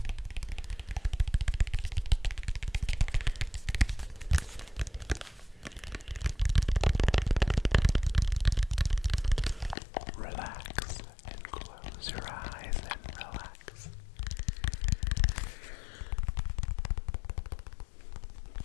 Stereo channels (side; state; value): right; drops out; at 9.8 s